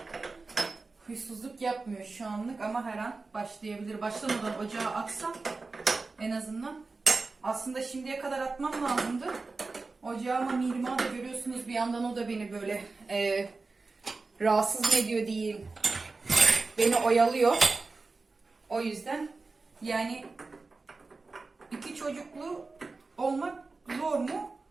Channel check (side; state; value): left; quieter; 3.8 dB